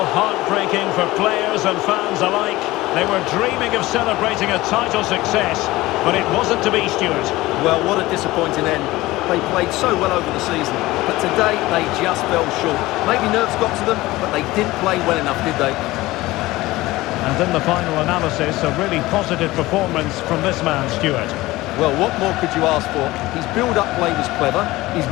heartbreaking for players and fans alike. They were dreaming of celebrating a title success, but it wasn't to be, Stuart. Well, what a disappointing end. They played so well over the season, but today they just fell short. Maybe nerves got to them, but they didn't play well enough, did they? And in the final analysis, a really positive performance from this man, Stuart. Well, what more could you ask for? His build-up play was clever, his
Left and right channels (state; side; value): quieter; right; 18.7 dB